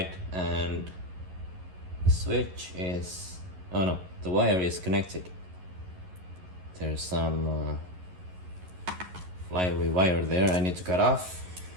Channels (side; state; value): left; late; 11 ms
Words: and the switch is... oh no, the wire is connected. There's some flyaway wire there I need to cut off